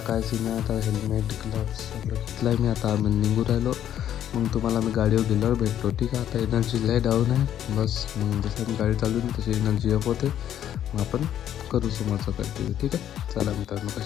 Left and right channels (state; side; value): quieter; right; 10.6 dB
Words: काय सीन आहे. आता हेल्मेट ग्लव्स सगळं घेतलं आहे मी. आता आम्ही निघू राहिलो. मग तुम्हाला मी गाडीवर गेल्यावर भेटतो, ठीक आहे. आता एनर्जी लय डाऊन आहे बस. मग जसं मी गाडी चालवून तशी एनर्जी अप होते. मग आपण करू समोरचं कंटिन्यू, ठीक आहे. चला मित्रांनो,